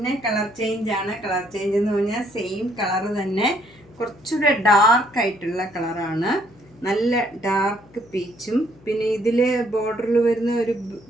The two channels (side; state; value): left; noise; hum, 26 dB below the sound